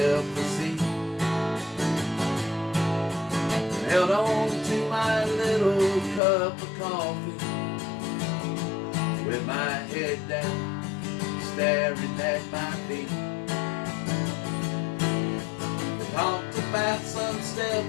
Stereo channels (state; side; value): drops out; right; at 6.2 s